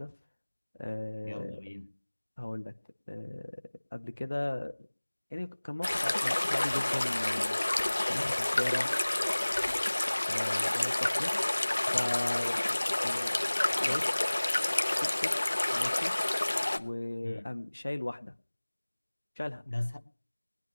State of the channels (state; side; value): inverted; both; correlation -1.00